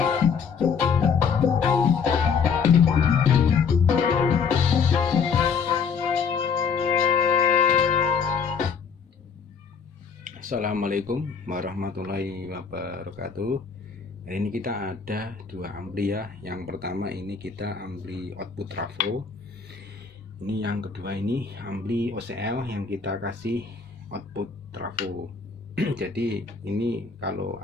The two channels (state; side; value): quieter; right; 5.9 dB